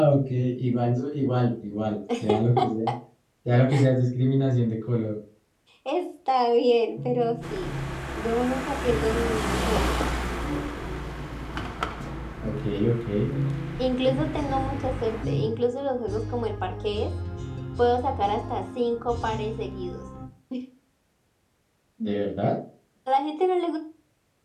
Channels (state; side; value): identical; both; correlation 1.00